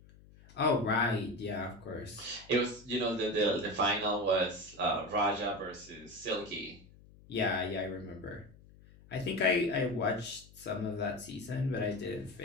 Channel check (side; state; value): left; noise; hum, 23 dB below the sound